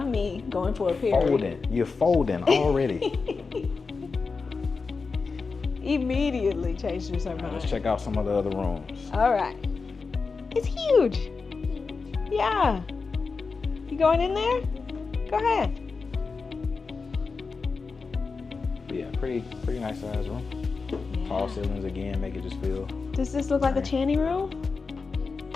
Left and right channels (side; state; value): right; quieter; 4.6 dB